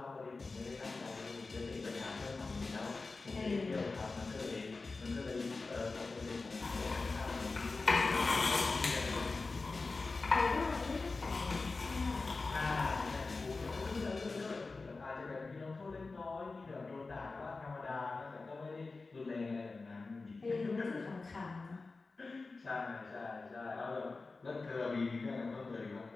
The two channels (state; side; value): quieter; right; 3.8 dB